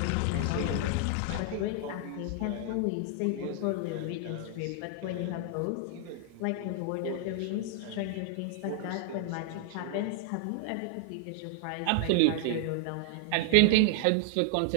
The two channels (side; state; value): both; different; correlation 0.00